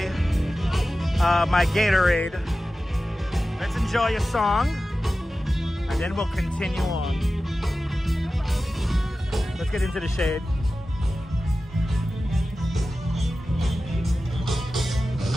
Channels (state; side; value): normal; both; correlation 0.94